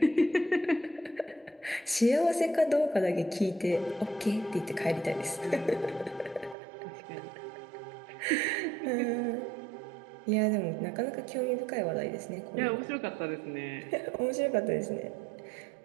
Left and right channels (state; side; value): drops out; left; at 6.6 s